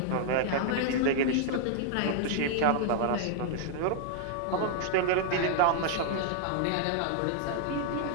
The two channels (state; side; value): different; both; correlation -0.01